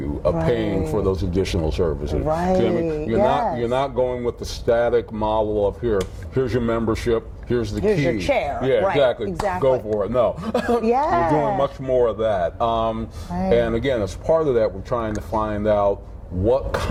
of paying for those additional services. You're not going with the static model of here's your membership, here's the key. Here's your chair. Exactly. Go for it. No. We're doing much more of that. And again, as part of that, we're trying to find out what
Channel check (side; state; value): both; identical; correlation 1.00